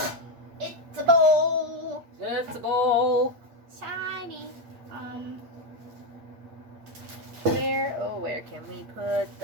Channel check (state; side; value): late; left; 8.6 ms